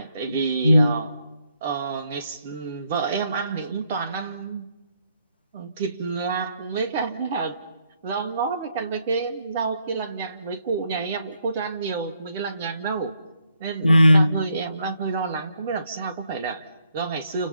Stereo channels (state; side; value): inverted; both; correlation -0.74